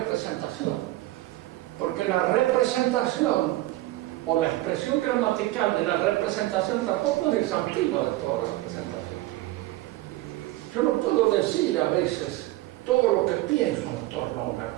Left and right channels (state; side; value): quieter; left; 17.4 dB